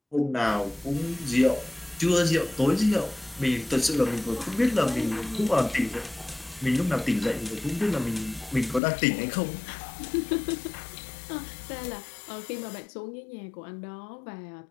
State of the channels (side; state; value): right; drops out; at 8.8 s